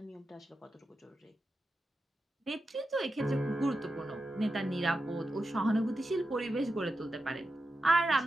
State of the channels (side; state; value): both; normal; correlation 0.90